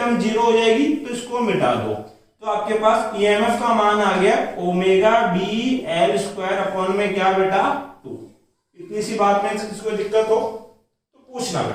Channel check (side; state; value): both; identical; correlation 1.00